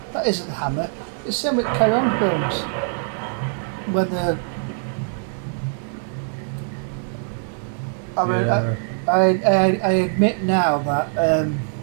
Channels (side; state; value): left; silent; 64 dB below the other